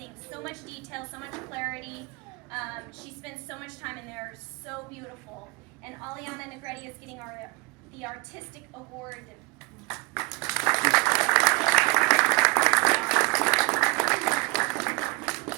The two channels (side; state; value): left; quieter; 28.5 dB